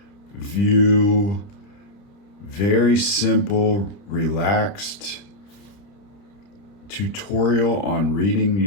very simple, relaxed tutorial on reading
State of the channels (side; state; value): right; late; 30 ms